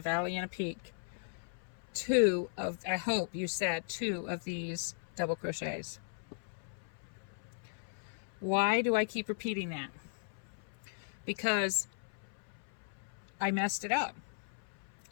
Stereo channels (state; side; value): silent; right; 53 dB below the other